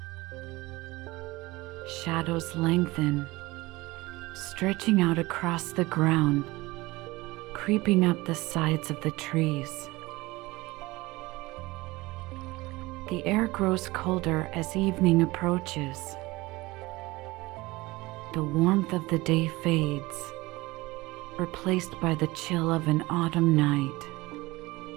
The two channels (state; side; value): quieter; left; 21.0 dB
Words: Shadows lengthen, stretching out across the ground, creeping up the sides of the trees. The air grows colder as evening approaches. The warmth of the day fades, replaced by the chill of an autumn night.